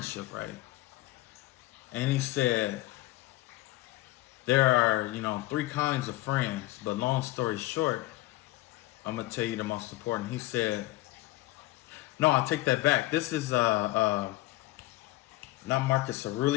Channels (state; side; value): quieter; right; 18.4 dB